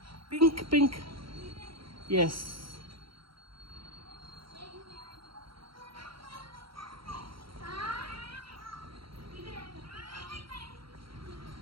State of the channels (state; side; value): late; left; 0.74 ms